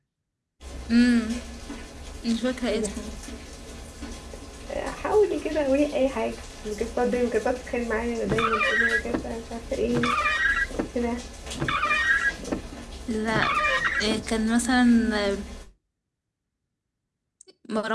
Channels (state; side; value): identical; both; correlation 1.00